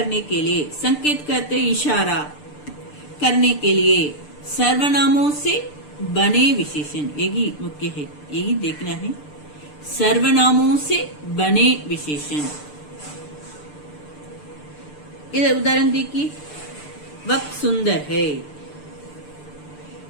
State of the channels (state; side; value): late; right; 6.7 ms